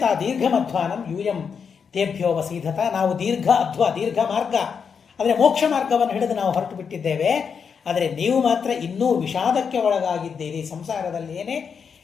ದೀರ್ಘಮಧ್ವಾನಂ ಯೂಯಂ ತೇಭ್ಯೋ ವಸೀಧತ. ನಾವು ದೀರ್ಘ ಮಾರ್ಗ ಅಂದರೆ ಮೋಕ್ಷ ಮಾರ್ಗವನ್ನು ಹಿಡಿದು ನಾವು ಹೊರಟು ಬಿಟ್ಟಿದ್ದೇವೆ. ಆದರೆ ನೀವು ಮಾತ್ರ ಇನ್ನೂ ವಿಷಾದಕ್ಕೆ ಒಳಗಾಗಿದ್ದೀರಿ, ಸಂಸಾರದಲ್ಲಿ ಏನೇ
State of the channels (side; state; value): right; quieter; 6.4 dB